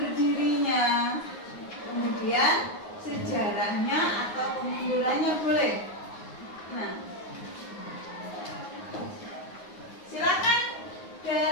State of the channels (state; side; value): late; right; 9.5 ms